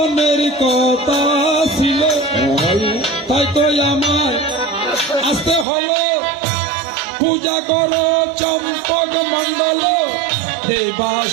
কথা ছিল, তাই তো আমার আসতে হলো, পূজা করো চম্পক মন্ডল এই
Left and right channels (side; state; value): left; drops out; at 5.7 s